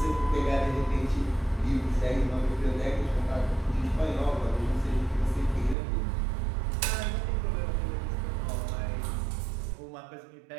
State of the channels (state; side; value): drops out; left; at 5.8 s